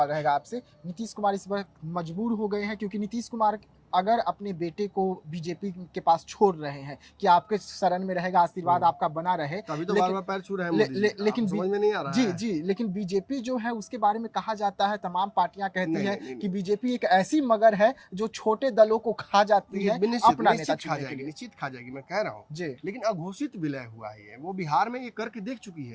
रहेगा आपसे, नीतीश कुमार इस वक्त मजबूर हो गए हैं क्योंकि नीतीश कुमार अगर अपने बेटे को बीजेपी के पास छोड़ रहे हैं कि आपके शरण में रहेगा, आशीर्वाद आपका बना रहे, तभी तो लेकिन- बार-बार पैर छू रहे हैं मोदी जी। लेकिन समझ में नहीं आ रहा जी है। जी, लेकिन बीजेपी जो है उसके बारे में कहा जाता है, तमाम पार्टियां कहती नहीं, है नहीं, नहीं, कि बीजेपी एक ऐसी मगर है जो छोटे दलों को खा जाती है अपना नेता चुनने के लिए। निश्चित खा जाएगी, मैं कह रहा हूँ। जी। लेकिन अघोषित विलय हुआ है, वो बिहार में ये करके देख चुकी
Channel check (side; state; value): both; identical; correlation 1.00